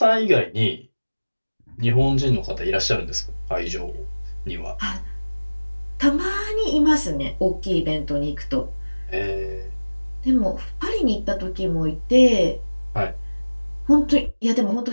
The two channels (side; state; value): both; inverted; correlation -1.00